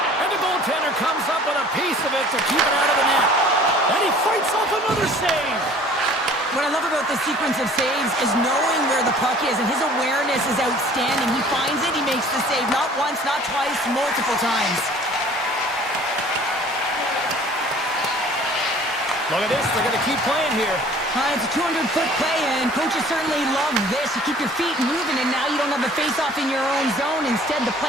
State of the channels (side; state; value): both; normal; correlation 0.50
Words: And the goaltender comes up with a piece of it to keep it out of the net. And he fights off another save. What I love about this sequence of saves is knowing where the puck is, and his awareness is outstanding. He finds it, he makes the save, not once, not twice, multiple times. Look at this, they're going to keep playing here. It's a 200-foot play, and coaches certainly love this. You keep your feet moving, and now you don't have a face-off in your own zone. Instead, the